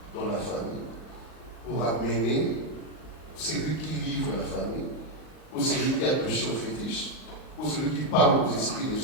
dans la famille pour amener celui qui livre la famille, ou celui qui a touché au fétiche, ou celui qui parle aux esprits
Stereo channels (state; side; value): late; right; 38 ms